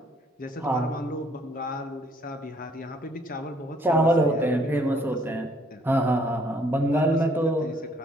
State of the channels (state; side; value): normal; both; correlation 0.64